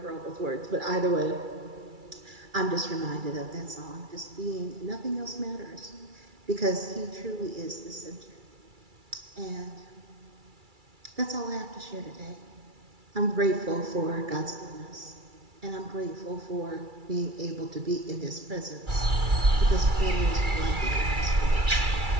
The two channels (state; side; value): late; left; 2.3 ms